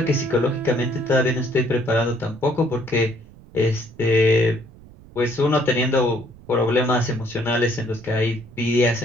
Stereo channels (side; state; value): right; noise; rumble, 21 dB below the sound